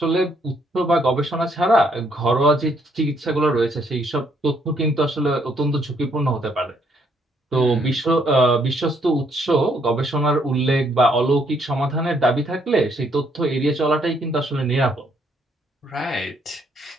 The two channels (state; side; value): normal; both; correlation 0.70